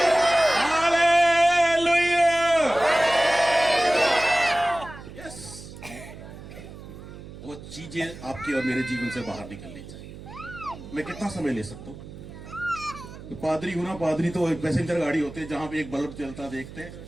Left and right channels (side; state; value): right; noise; hum, 15 dB below the sound